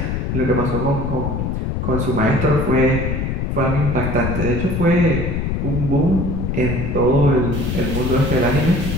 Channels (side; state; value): left; noise; rumble, 1 dB below the sound